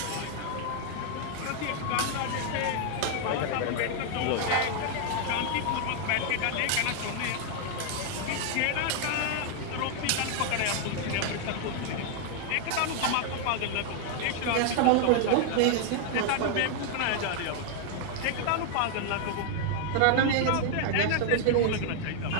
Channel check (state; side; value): different; both; correlation 0.00